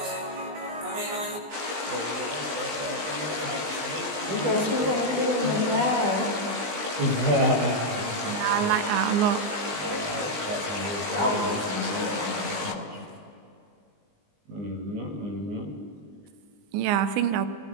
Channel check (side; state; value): left; late; 20 ms